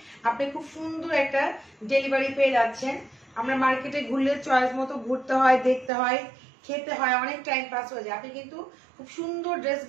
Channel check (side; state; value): left; drops out; at 5.9 s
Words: আপনি খুব সুন্দর একটা ডেলিভারি পেয়ে যাচ্ছেন। আমরা মার্কেটে ঘুরলে চয়েস মতো ঘুরতে হয়, দেখতে হয়, খেতে হয়, অনেক টাইম পাস হয়ে যায়। আপনি কিন্তু খুব সুন্দর